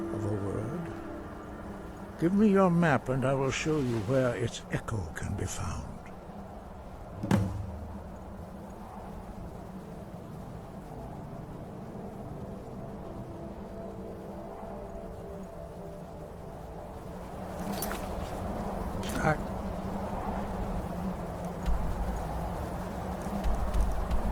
a word. Give me your map and I will show you where its echo can be found.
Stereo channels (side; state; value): both; identical; correlation 1.00